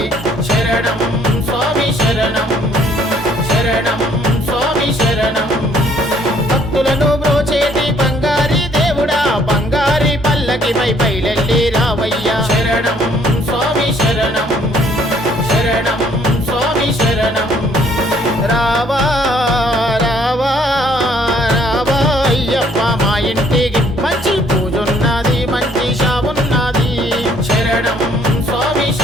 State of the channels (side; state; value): both; normal; correlation 0.62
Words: శరణం స్వామి శరణం శరణం స్వామి శరణం భక్తులను బ్రోచేటి బంగారి దేవుడా బంగారి పల్లకిపై బయలెల్లి రావయ్యా శరణం స్వామి శరణం శరణం స్వామి శరణం రావా రావా రావా అయ్యప్ప మా ఇంటికి మంచి పూజున్నది మంచి షావున్నది శరణం స్వామి